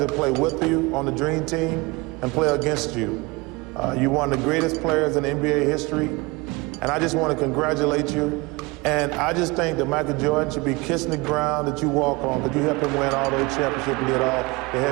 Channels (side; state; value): left; quieter; 24.9 dB